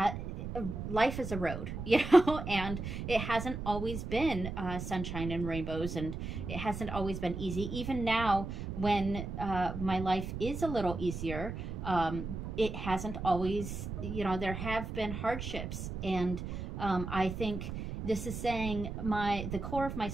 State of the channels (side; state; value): right; noise; rumble, 6 dB below the sound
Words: life is a road, you know, and it hasn't always been sunshine and rainbows, and it hasn't always been easy. Even now, when my life is a little easier, it hasn't always, you know, there have been hardships, and I think this is saying the core of my